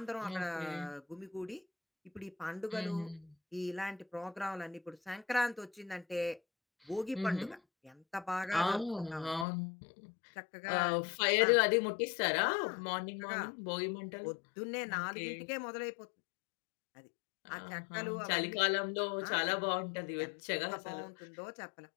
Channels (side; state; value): right; drops out; at 9.5 s